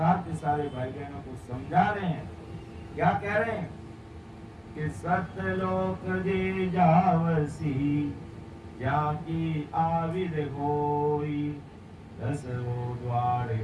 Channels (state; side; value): identical; both; correlation 1.00